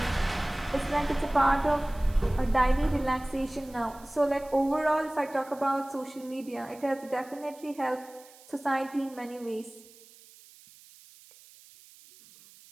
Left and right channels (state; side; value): noise; right; hiss, 23 dB below the sound